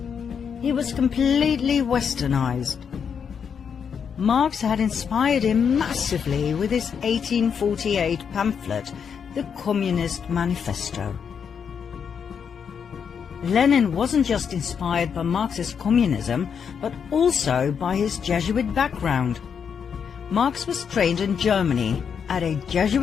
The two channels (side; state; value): right; quieter; 7.0 dB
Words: He was completely westernized. Marx had inspired him massively with his 1848 pamphlet, the Communist Manifesto. Lenin wasn't just inspired by Marxist communism, but also by his Jesuit background. Marx was trained in Germany at a